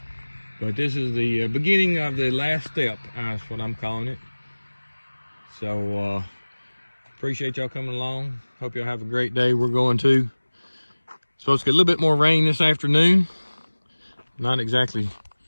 But this is the beginning of the last step, that's what I'm calling it. So appreciate y'all coming along. Hope y'all have a great day. We're going to supposed to get a little bit more rain this afternoon. Not exactly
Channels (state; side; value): inverted; both; correlation -1.00